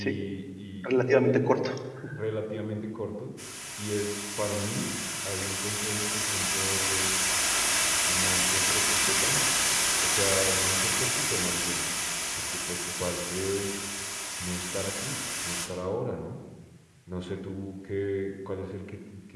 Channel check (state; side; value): identical; both; correlation 1.00